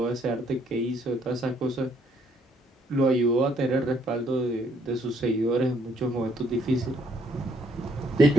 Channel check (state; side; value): normal; both; correlation 0.67